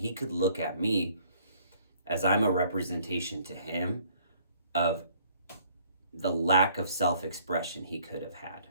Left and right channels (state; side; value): inverted; both; correlation -0.60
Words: could look at me as I'm a representation to him of the lack of self-expression he could have had.